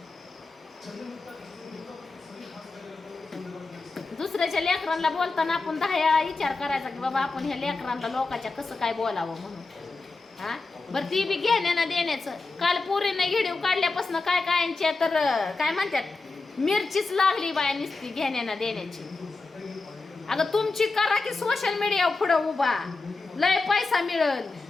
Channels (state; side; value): quieter; right; 3.7 dB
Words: दुसऱ्याच्या लेकरांना बोलताना आपण 10 वेळा विचार करायचा की बाबा आपण ह्या लेकरांना लोकांच्या कसं काय बोलावं म्हणून. हा बरं, ती बी घेण्यानं देण्याचं. काल पोरीने व्हिडिओ काढल्यापासून काय कायांच्या तर काय म्हणतात मिरचीच लागली बाया नुसती घेण्यानं देण्याची. अगं तुमची करा की सोशल मीडियावर पुढं उभा, लय पैसा मिळल.